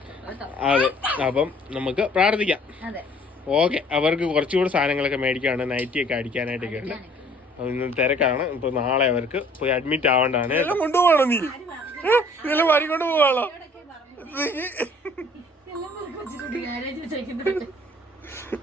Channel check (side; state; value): both; normal; correlation 0.55